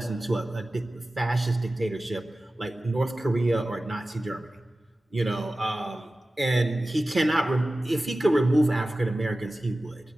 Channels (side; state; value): both; normal; correlation 0.96